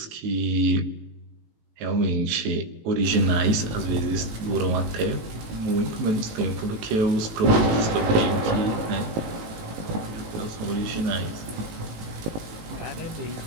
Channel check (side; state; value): left; late; 18 ms